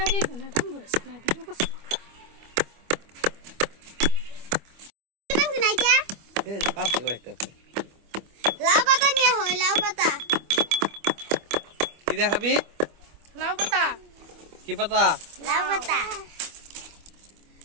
না দাম বলেছে না ভিডিও করছ এই পাশে কয়টা লাউ পাতা নিয়ে হয় লাউ পাতা কি দেখাবি লাউ পাতা কি পাতা লাউ পাতা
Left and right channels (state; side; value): late; left; 25 ms